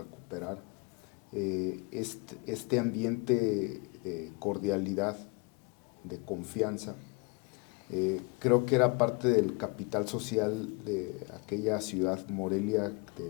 Este ambiente de cordialidad, de confianza, creo que era parte del capital social de aquella ciudad Morelia de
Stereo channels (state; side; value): quieter; right; 30.2 dB